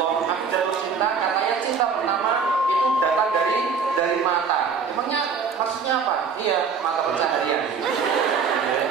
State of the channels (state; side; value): quieter; left; 5.8 dB